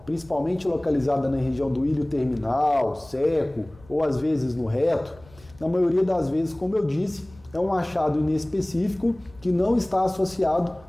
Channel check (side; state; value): left; noise; rumble, 25 dB below the sound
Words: principalmente localizada na região do ilho terminal, seco ou às vezes no reto, na maioria das vezes, como eu disse, é um achado inespecífico que não está associado